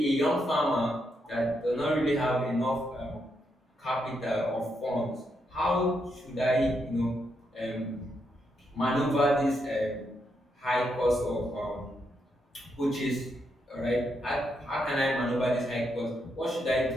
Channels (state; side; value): normal; both; correlation 0.80